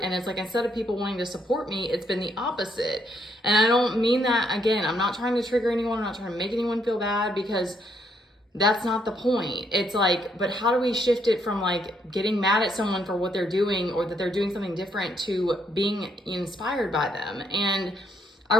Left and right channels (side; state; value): both; normal; correlation 0.73